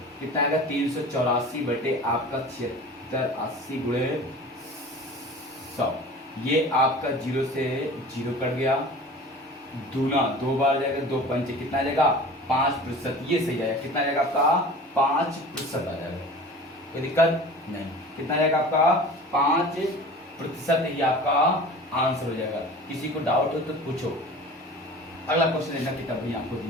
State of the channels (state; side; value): normal; both; correlation 0.40